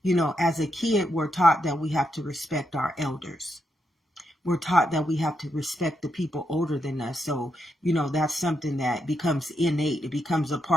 you know, as a kid, we're taught that we have to respect our elders. We're taught that we have to respect the people older than us. So, you know, that's something that becomes innate. It becomes a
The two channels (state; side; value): normal; both; correlation 0.82